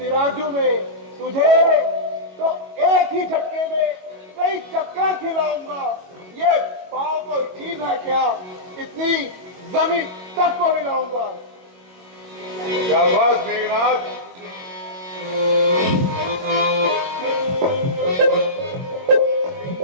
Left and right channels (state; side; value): late; left; 22 ms